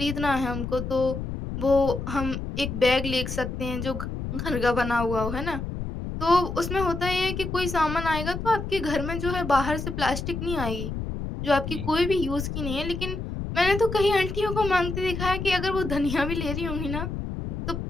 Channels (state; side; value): noise; left; rumble, 5 dB below the sound